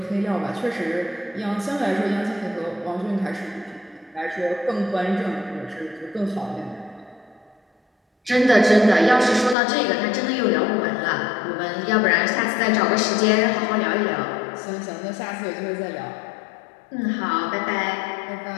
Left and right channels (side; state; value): right; drops out; at 9.6 s